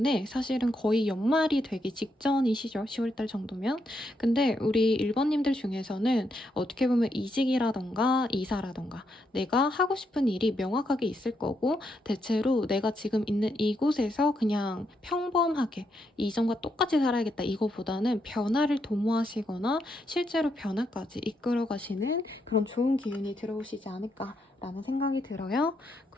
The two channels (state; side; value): normal; both; correlation 0.79